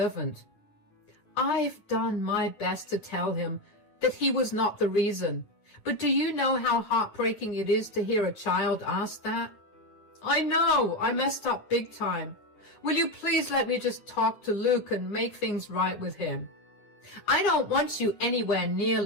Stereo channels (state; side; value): late; right; 9.7 ms